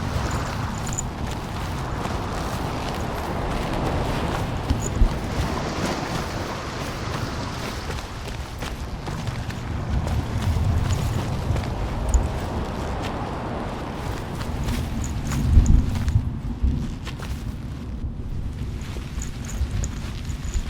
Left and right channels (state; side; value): identical; both; correlation 1.00